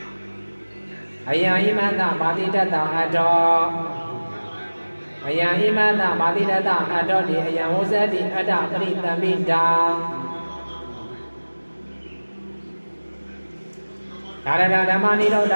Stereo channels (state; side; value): inverted; both; correlation -1.00